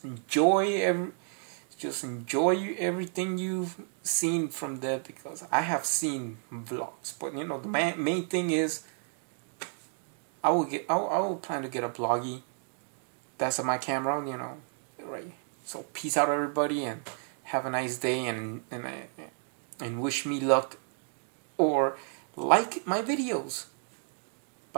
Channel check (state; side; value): silent; left; 57 dB below the other